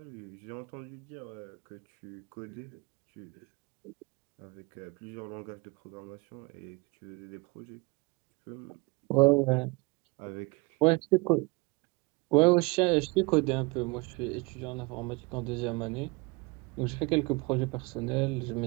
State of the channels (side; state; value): left; quieter; 27.0 dB